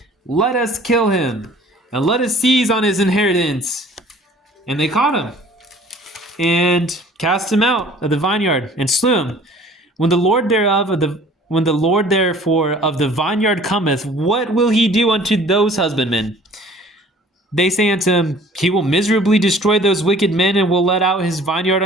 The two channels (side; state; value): both; normal; correlation 0.51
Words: let us kill him, and let us seize on his inheritance. And they caught him, and cast him out of the vineyard, and slew him. When the Lord therefore of the vineyard cometh, what will he do unto those husbandmen? They say unto him, He will miserably destroy those wicked men, and will let out his vineyard